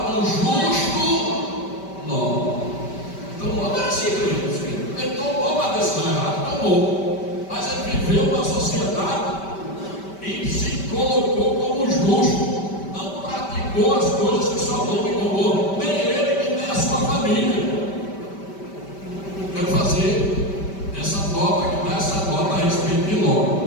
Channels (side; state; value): right; late; 5.1 ms